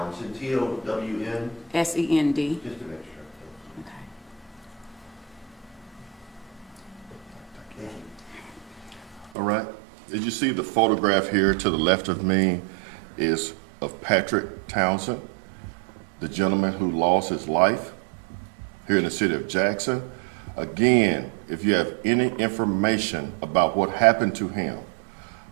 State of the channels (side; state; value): left; drops out; at 9.3 s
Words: T-O-W-N? S-E-N-D. Just to make sure. Okay. Thank you. All right. As you see, the photograph here to the left of me is of Patrick Townsend, the gentleman who lost his life here in the city of Jackson. Again, if you have any information about what happened to him,